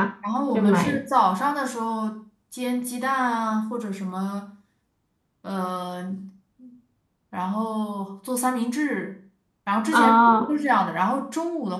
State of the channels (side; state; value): both; identical; correlation 1.00